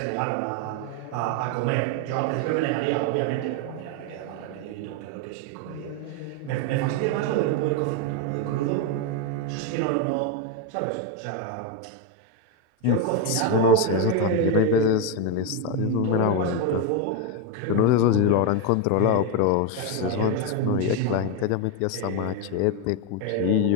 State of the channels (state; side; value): different; both; correlation 0.02